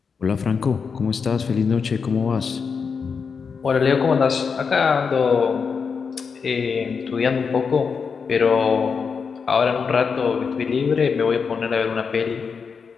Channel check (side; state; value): right; quieter; 5.7 dB